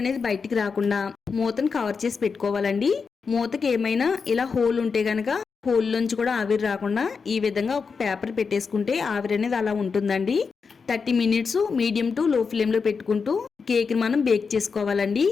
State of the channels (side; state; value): right; quieter; 5.3 dB